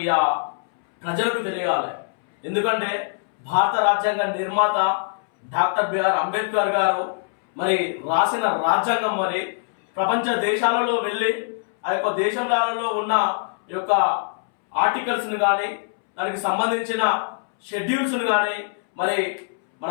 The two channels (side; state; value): right; silent; 64 dB below the other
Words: ప్రజలకు తెలియాలి. ఎందుకంటే భారత రాజ్యాంగ నిర్మాత డాక్టర్ బిఆర్ అంబేద్కర్ గారు మరి రాసిన రాజ్యాంగం మరి ప్రపంచ దేశాలలో వెళ్ళి ఆ యొక్క దేశాలలో ఉన్న యొక్క ఆర్టికల్స్ని కానీ దానికి సంబంధించిన షెడ్యూల్స్ను కానీ మరి మన